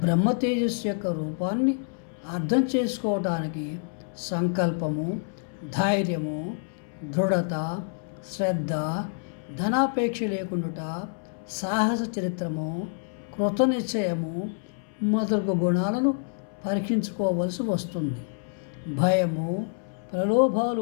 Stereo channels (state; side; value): silent; right; 60 dB below the other